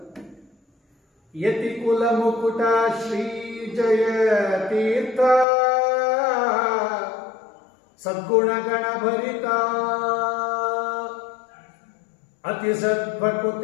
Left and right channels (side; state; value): right; drops out; at 5.5 s